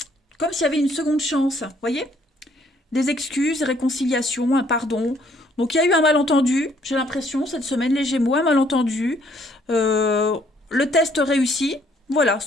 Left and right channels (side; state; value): both; normal; correlation 0.65